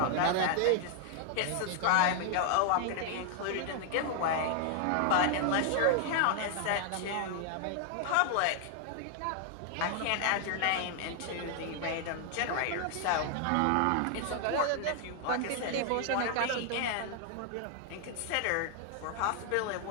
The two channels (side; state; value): both; different; correlation 0.00